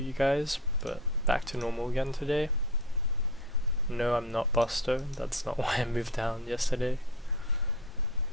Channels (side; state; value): both; normal; correlation 0.34